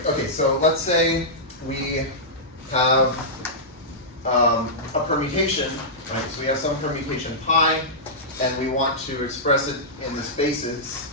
Okay, so let's say we have a permutation, right? So we have some permutation pi, and we want to express it in this basis,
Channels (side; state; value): both; normal; correlation -0.13